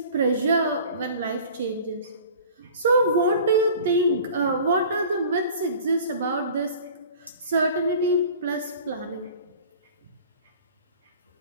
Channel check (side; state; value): both; inverted; correlation -0.44